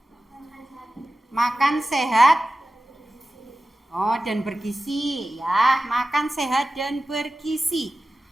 makan sehat. Oh, dan bergizi ya, makan sehat dan bergizi.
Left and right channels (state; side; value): normal; both; correlation 0.95